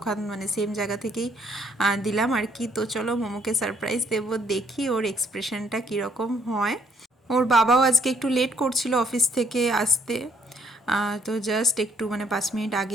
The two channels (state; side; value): normal; both; correlation 0.67